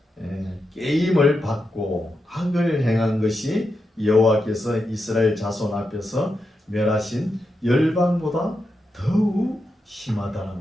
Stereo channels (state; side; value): normal; both; correlation 0.87